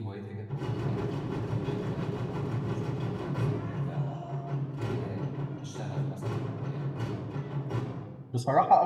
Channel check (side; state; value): both; identical; correlation 1.00